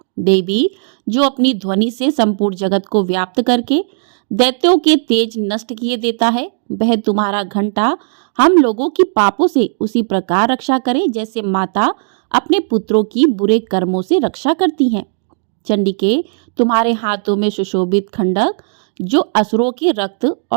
देवी, जो अपनी ध्वनि से संपूर्ण जगत को व्याप्त करके दैत्यों के तेज नष्ट किए देता है, वह तुम्हारा घंटा हम लोगों की पापों से उसी प्रकार रक्षा करे जैसे माता अपने पुत्रों की बुरे कर्मों से रक्षा करती हैं। चंडिके, तुम्हारे हाथों में सुशोभित खंडक जो असुरों के रक्त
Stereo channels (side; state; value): left; silent; digital silence